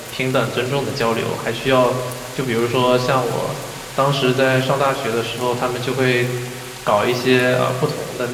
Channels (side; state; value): both; identical; correlation 1.00